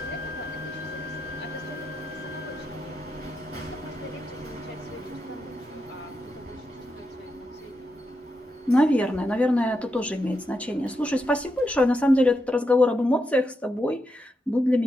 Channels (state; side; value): normal; both; correlation 0.85